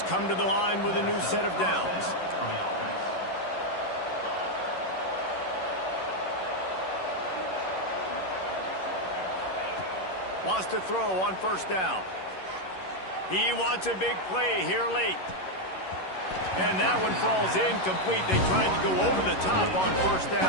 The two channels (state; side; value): late; right; 11 ms